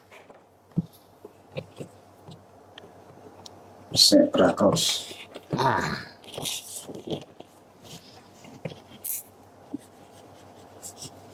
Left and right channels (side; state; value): both; identical; correlation 1.00